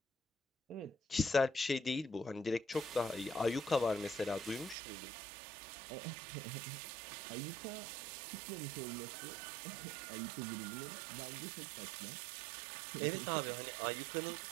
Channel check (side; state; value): left; drops out; at 4.8 s